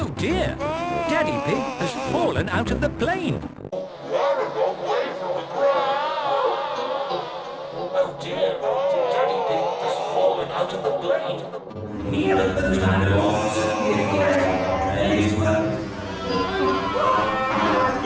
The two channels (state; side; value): identical; both; correlation 1.00